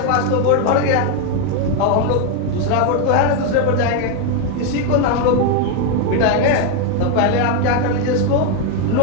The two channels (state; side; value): different; both; correlation 0.01